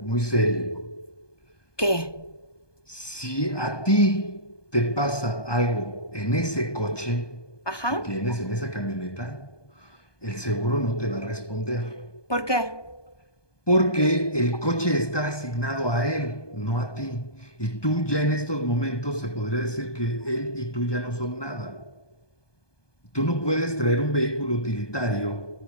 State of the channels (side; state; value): right; late; 1.2 ms